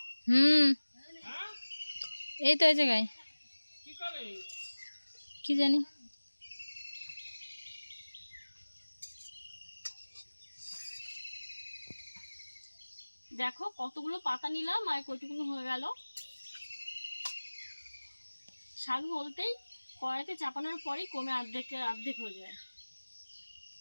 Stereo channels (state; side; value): inverted; both; correlation -1.00